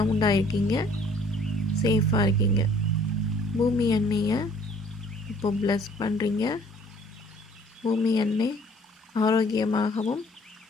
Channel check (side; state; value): both; normal; correlation 0.57